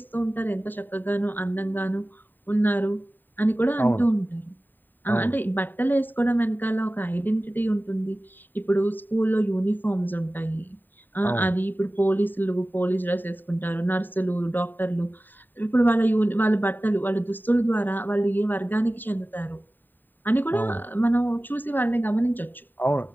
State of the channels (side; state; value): right; late; 0.091 ms